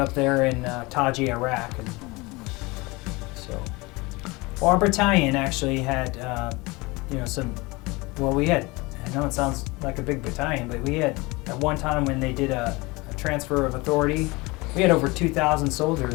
there in Taji, Iraq. And so, our battalion actually had, I know it sounds like a big battalion, but we had, at one time when they did a transfer of authority, we had over 2,000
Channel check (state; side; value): quieter; right; 24.1 dB